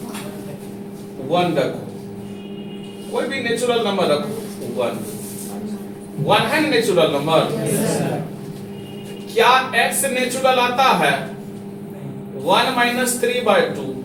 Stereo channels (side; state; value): both; identical; correlation 1.00